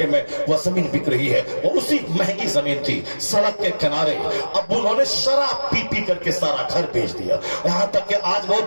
میں وہ زمین بک رہی ہے۔ وہ اسی مہنگی زمین تھی، سڑک کے کنارے۔ اب انہوں نے شراب پی پی کر کے سارا گھر بیچ دیا، یہاں تک کہ آج وہ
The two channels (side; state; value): both; inverted; correlation -1.00